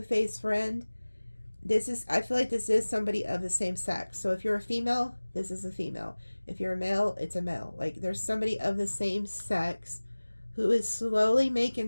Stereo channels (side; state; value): both; inverted; correlation -1.00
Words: friend. I feel like this is somebody of the same sex. So if you're a female, this is a female. If you're a male, it's a male. Like, there's somebody of the same sex who is slowly